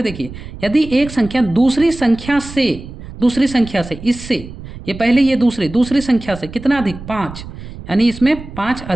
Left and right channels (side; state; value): right; noise; rumble, 13 dB below the sound